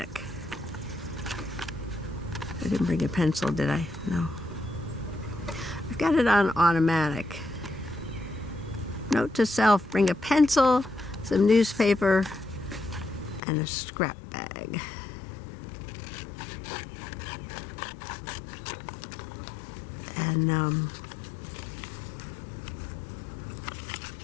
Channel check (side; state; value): right; drops out; at 13.4 s